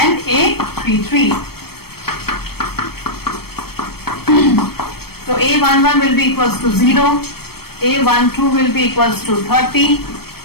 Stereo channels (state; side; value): late; right; 0.95 ms